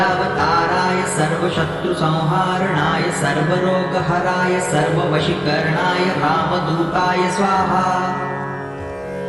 सर्वशत्रुसंहारणाय सर्वरोगहराय सर्ववशीकरणाय रामदूताय स्वाहा।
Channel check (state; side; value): identical; both; correlation 1.00